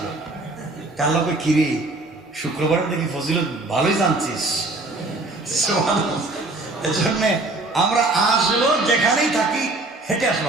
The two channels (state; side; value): quieter; left; 3.0 dB